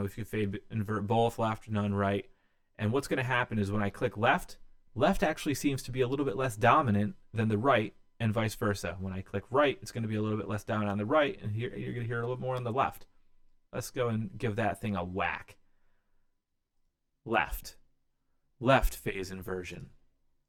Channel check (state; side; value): identical; both; correlation 1.00